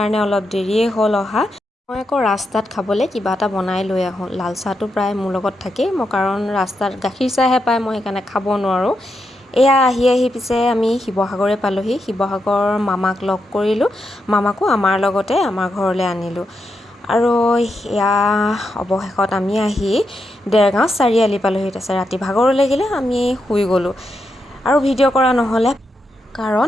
অলপ দেৰিয়ে হ'ল অহা। মই আকৌ ৰাস্তাত খাবলৈ কিবা এটা বনাই লৈ আহোঁ। লাল চাহটো প্ৰায় মোৰ লগত থাকেই, মই কাৰণ ৰাস্তাত গাখীৰ চাহহে পায়, মই সেইকাৰণে খাব নোৱাৰোঁ। এয়া আহি পিছে আমি শিৱসাগৰে পালোঁহি। শিৱসাগৰ মামাক লগ কৰিলোঁ, মামাকো আমাৰ লগতে আমাৰ ঘৰলৈ আনিলোঁ। আৰু এয়া অৱশেষত আমি আহি দেৰগাঁও চাৰিআলি পালোঁহি। তাৰপিছত ৰাতি ভাগৰ লাগিলে, আমি শুই গ'লোঁ আৰু ভিডিঅ' কৰা নহ'লে,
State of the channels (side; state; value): both; normal; correlation 0.84